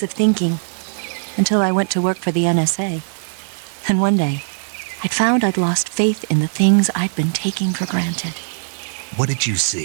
of thinking, until I went to work for the NSA. And one day, I'd found I'd lost faith in the things I'd been taking for granted. What did you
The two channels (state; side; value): silent; left; digital silence